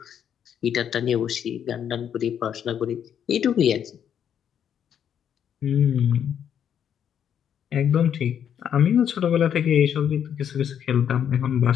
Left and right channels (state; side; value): quieter; right; 8.9 dB